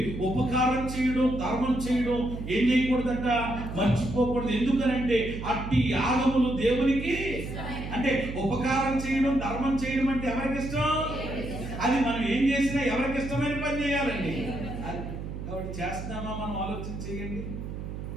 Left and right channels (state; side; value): noise; right; hum, 7 dB below the sound